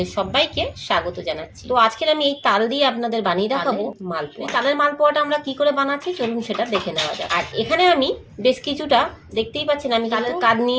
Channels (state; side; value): identical; both; correlation 1.00